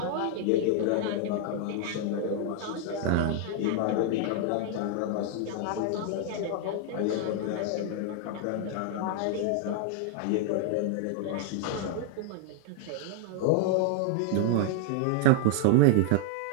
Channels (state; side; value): different; both; correlation 0.00